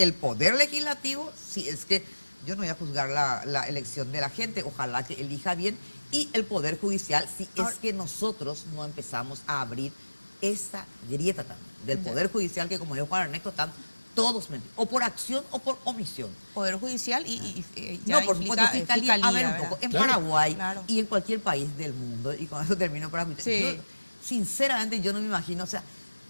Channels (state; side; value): inverted; both; correlation -1.00